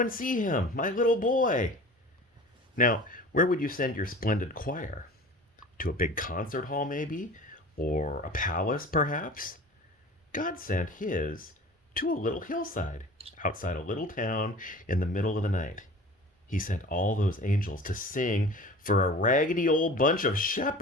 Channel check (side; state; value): both; normal; correlation 0.40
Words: see him, my little boy. Now, where would you send your splendid choir? To a big concert hall, maybe? Or a palace, perhaps? God sent his to a little hillside outside a little town in the middle of the night. He sent all those angels to sing for a raggedy old bunch of